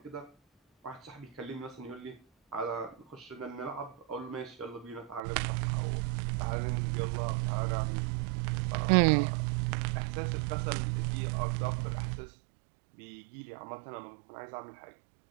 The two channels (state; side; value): drops out; left; at 5.2 s